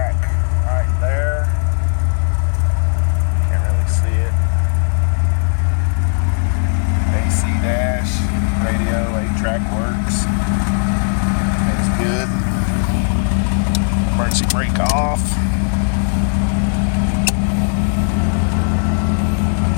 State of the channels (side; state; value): right; silent; digital silence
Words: right there. Can't really see it. AC dash, radio, 8-track works. Everything's good. emergency brake off.